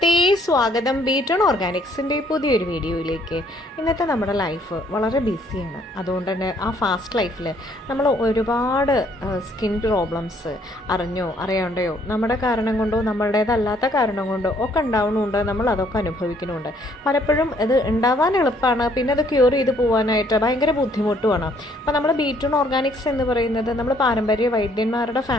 സ്വാഗതം ബീറ്റൺ ഓർഗാനിക്സിൻ്റെ പുതിയൊരു വീഡിയോയിലേക്ക്. ഇന്നത്തെ നമ്മുടെ ലൈഫ് വളരെ ബിസിയാണ്. അതുകൊണ്ട് തന്നെ ആ ഫാസ്റ്റ് ലൈഫിൽ നമ്മൾ ഒരുപാട് സ്കിൻ പ്രോബ്ലംസ് അറിഞ്ഞോ അറിയാണ്ടയോ നമ്മുടെ കാരണം കൊണ്ടോ നമ്മളുടേതല്ലാത്ത കാരണം കൊണ്ടോ ഒക്കെ ഉണ്ടാവുന്നുണ്ട്. നമ്മൾ അതൊക്കെ അനുഭവിക്കുന്നുണ്ട്. പലപ്പോഴും ഇത് ഉണ്ടാവാൻ എളുപ്പമാണ്, പിന്നെ അത് ക്യൂർ ചെയ്ത് പോകാനായിട്ട് ഭയങ്കര ബുദ്ധിമുട്ടുമാണ്. അപ്പോൾ നമ്മൾ ബീറ്റൺ ഓർഗാനിക്സ് എന്ന് പറയുന്നത് നമ്മൾ പാരമ്പര്യ വൈദ്യന്മാരുടെ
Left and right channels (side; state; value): both; normal; correlation 0.64